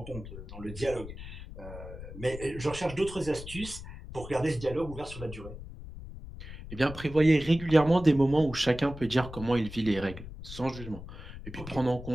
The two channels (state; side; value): noise; left; rumble, 12 dB below the sound